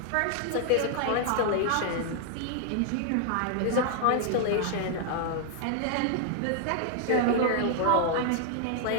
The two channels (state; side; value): different; both; correlation 0.00